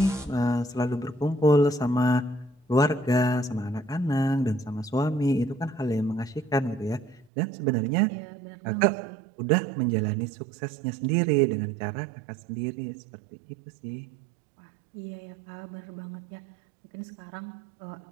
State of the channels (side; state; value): left; drops out; at 7.3 s